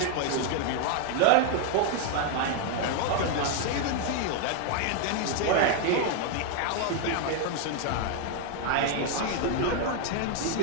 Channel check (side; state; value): both; different; correlation 0.01